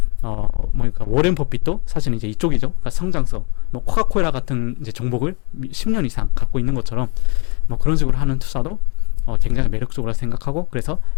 그러니까 워렌 버핏도 사실 이제 이쪽이죠. 그러니까 성장성, 뭐 코카콜라 같은 이제 종목을 10년 이상 갖고 있는 것처럼 뭐 그런 식으로 하는 투자도 굉장히 매력적으로 생각하고, 그래서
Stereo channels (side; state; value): right; quieter; 33.4 dB